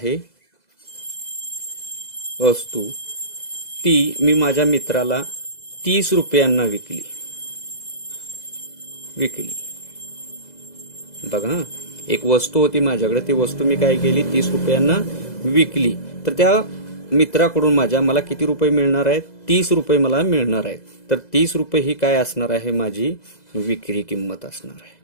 ती मी माझ्या मित्राला 30 रुपयांना विकली. बघा, एक वस्तू होती माझ्याकडे, ती वस्तू मी काय केली? 30 रुपयांना विकली. तर त्या मित्राकडून मला किती रुपये मिळणार आहेत? 30 रुपये मला मिळणार आहेत. तर 30 रुपये ही काय असणार आहे? माझी विक्री किंमत असणार आहे.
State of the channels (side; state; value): right; late; 2.0 ms